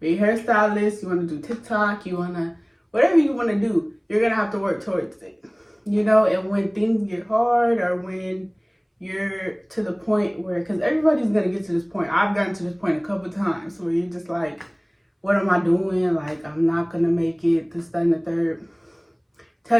a hairstylist, you want to do TikTok, whatever you want to do, you're going to have to work towards it. You know, and when things get hard or when you're to the point where, because everybody's going to get to this point. I've gotten to this point a couple times where you're just like, what am I doing? Like, I'm not going to make it, this, that, and the third.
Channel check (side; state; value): both; identical; correlation 1.00